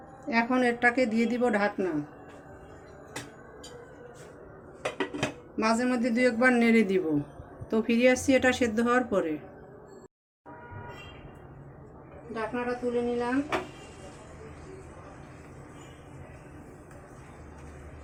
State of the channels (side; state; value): both; identical; correlation 1.00